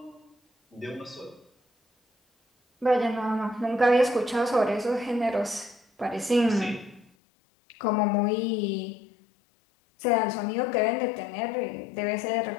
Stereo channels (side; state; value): right; drops out; at 7.1 s